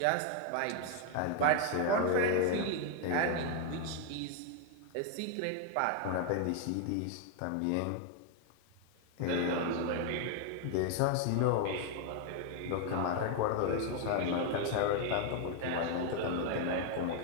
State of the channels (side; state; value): both; different; correlation 0.01